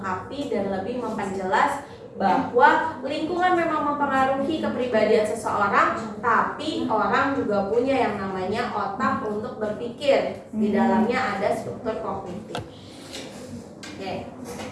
dan lebih memperjelas bahwa lingkungan memang mempengaruhi kepribadian seseorang, tapi orang juga punya yang namanya otak untuk berpikir. Di dalamnya ada struktur kognitif. Oke.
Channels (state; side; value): identical; both; correlation 1.00